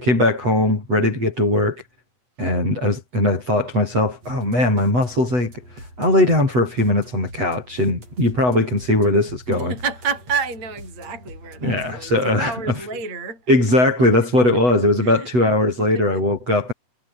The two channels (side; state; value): left; late; 8.1 ms